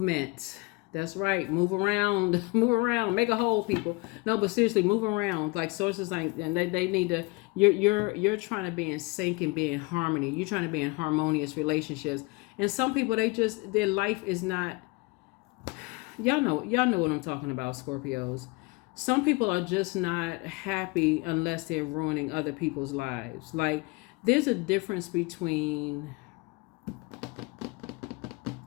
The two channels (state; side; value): quieter; right; 26.0 dB